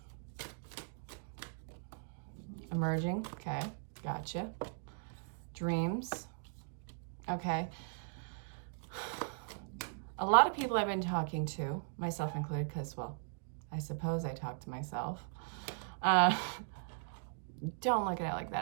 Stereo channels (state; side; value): silent; left; digital silence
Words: Emerging, okay, gotcha. Dreams, okay. A lot of people I've been talking to, myself included, because, well, I suppose I talk to myself. Don't look at it like